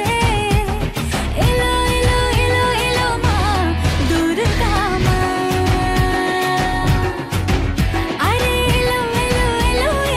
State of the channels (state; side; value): identical; both; correlation 1.00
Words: এলো এলো এলো এলো মা দুর্গা মা, আরে এলো এলো এলো